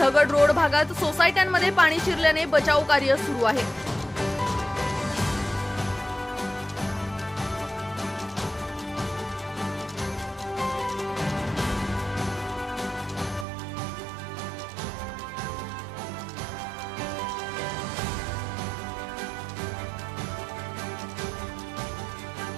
रोड भागात सोसायट्यांमध्ये पाणी शिरल्याने बचाव कार्य सुरू आहे.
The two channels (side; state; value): left; drops out; at 13.5 s